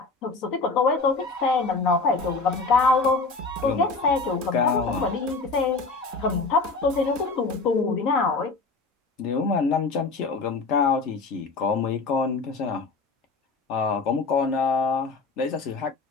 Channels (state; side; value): quieter; right; 4.0 dB